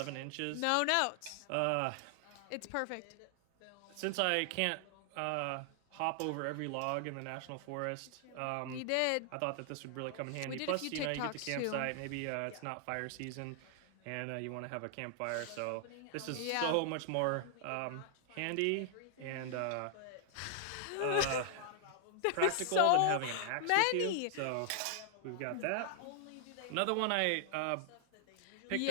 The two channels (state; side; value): different; both; correlation 0.00